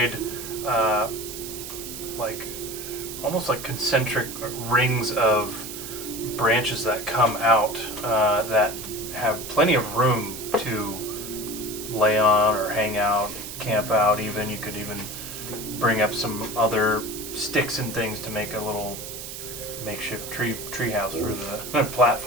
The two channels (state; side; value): noise; right; hiss, 9 dB below the sound